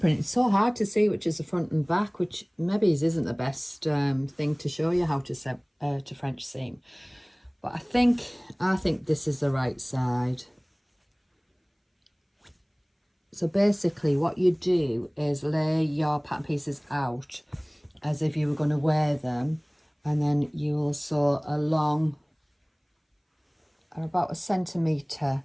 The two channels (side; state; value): both; identical; correlation 1.00